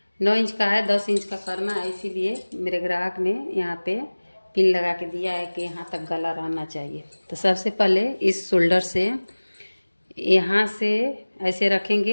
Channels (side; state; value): both; inverted; correlation -1.00